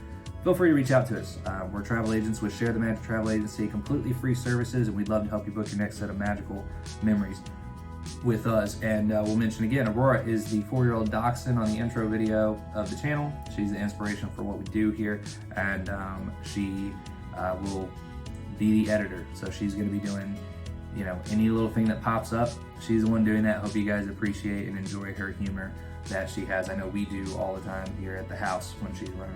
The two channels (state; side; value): identical; both; correlation 1.00